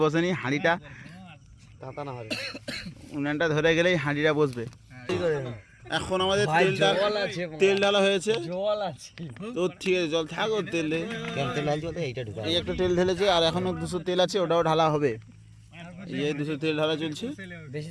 বসেনি। হাঁড়িটা উনানটা ধরে গেলেই হাঁড়িটা বসবে। এখন আমাদের তেল ঢালা হয়েছে তো, ঠিক আছে জল থাক, ওর তেল এই একটা তেল ঢেলেছে, আর এখনো 200 তেল আছে, ওটাও ঢালা হবে। এই 200 তেল ঢালা চলছে। বেশি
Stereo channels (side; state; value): both; identical; correlation 1.00